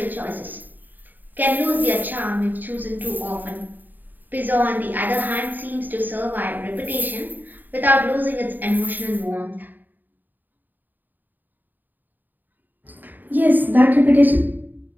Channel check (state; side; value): late; left; 0.088 ms